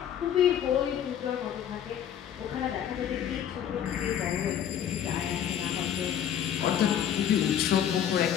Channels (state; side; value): quieter; right; 9.7 dB